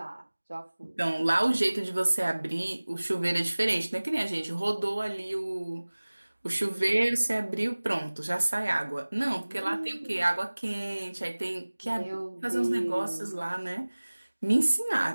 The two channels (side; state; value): both; inverted; correlation -1.00